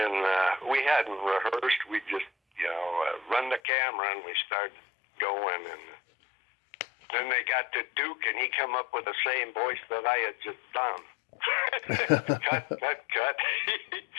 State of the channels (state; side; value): drops out; right; at 3.6 s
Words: we hadn't rehearsed, we just, run the camera and we started going. And then they got to Duke, and he come up with the same voice that I had just done. cut.